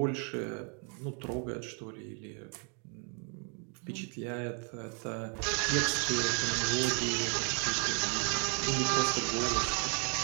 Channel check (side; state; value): left; quieter; 39.1 dB